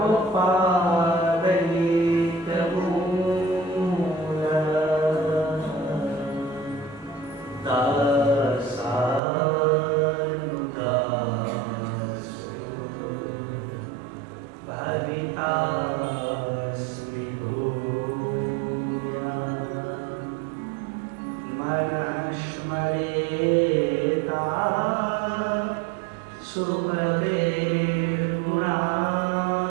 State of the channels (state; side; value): drops out; left; at 9.2 s